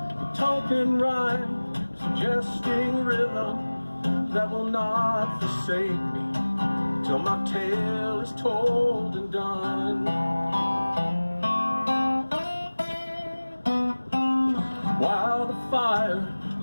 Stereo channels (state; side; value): inverted; both; correlation -1.00